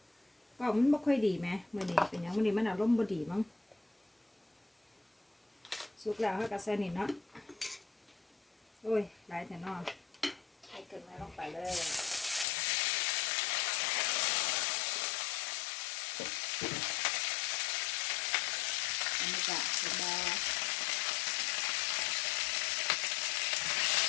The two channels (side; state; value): right; drops out; at 12.5 s